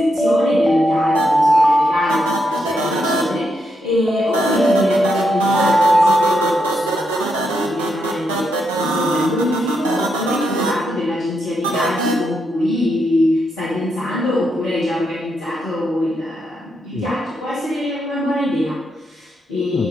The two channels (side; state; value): both; normal; correlation 0.81